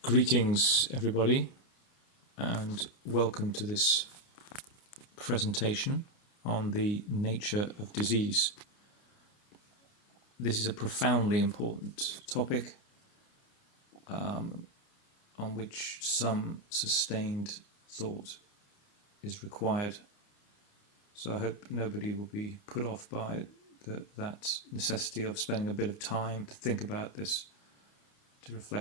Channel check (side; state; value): right; late; 29 ms